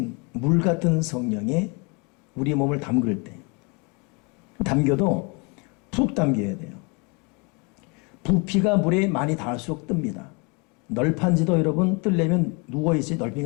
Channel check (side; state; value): right; quieter; 31.1 dB